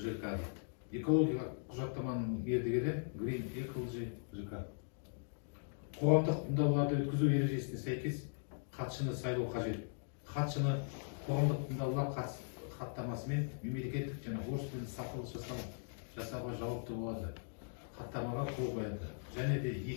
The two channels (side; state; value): right; silent; digital silence